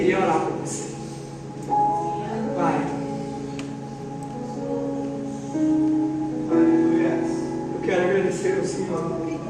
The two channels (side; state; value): both; identical; correlation 1.00